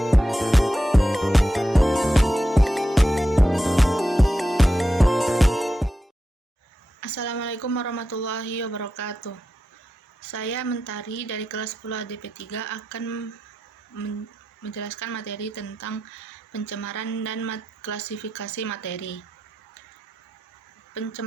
warahmatullahi wabarakatuh. Saya Mentari dari kelas 10 ADP 3 akan menjelaskan materi tentang pencemaran dan klasifikasi materi.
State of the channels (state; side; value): normal; both; correlation 0.89